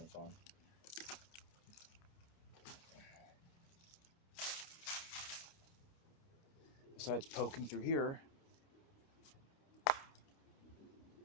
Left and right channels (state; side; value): late; right; 29 ms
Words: of fun. Besides poking through here,